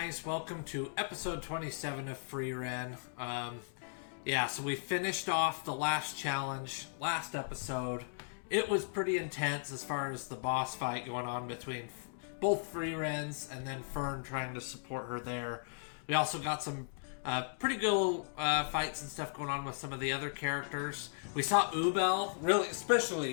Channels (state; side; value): silent; right; digital silence